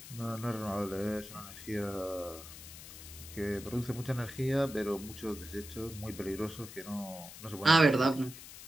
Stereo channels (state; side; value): noise; left; hiss, 14 dB below the sound